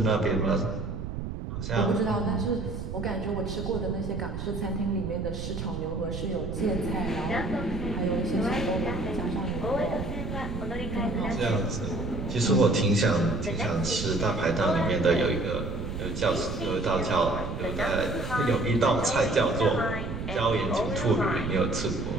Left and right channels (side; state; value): right; noise; rumble, 6 dB below the sound